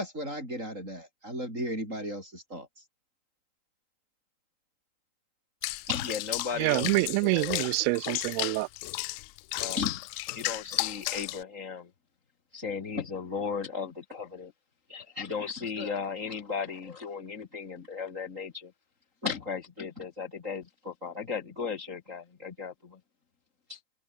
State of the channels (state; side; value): late; left; 3.8 ms